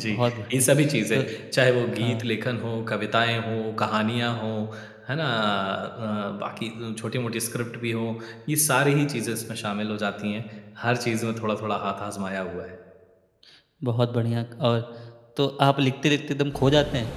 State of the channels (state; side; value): identical; both; correlation 1.00